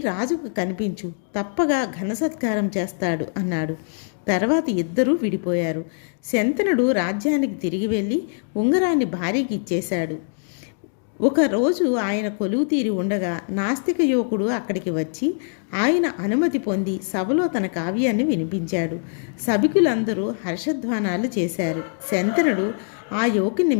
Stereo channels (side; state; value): right; silent; digital silence